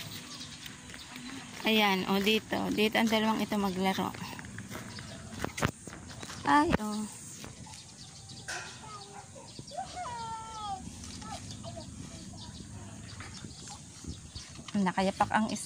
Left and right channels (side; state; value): both; identical; correlation 1.00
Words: Ayan, o dito. Dito ang dalawang ito maglaro. Ay, oh. Nakayapak ang